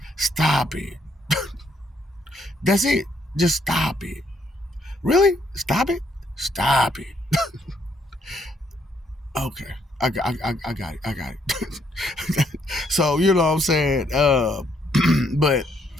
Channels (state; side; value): normal; both; correlation 0.71